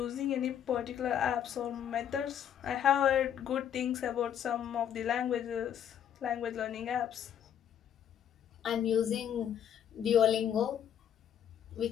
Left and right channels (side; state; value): right; quieter; 9.4 dB